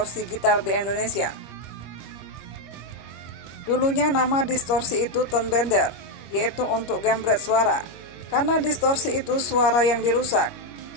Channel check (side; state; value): right; late; 25 ms